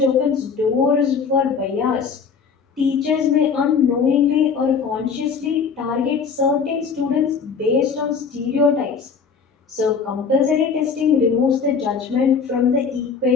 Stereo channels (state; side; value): quieter; right; 5.8 dB